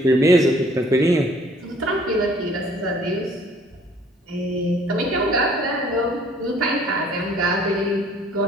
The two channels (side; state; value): both; normal; correlation 0.57